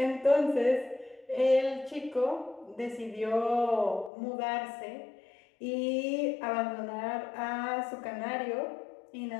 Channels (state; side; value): drops out; right; at 4.1 s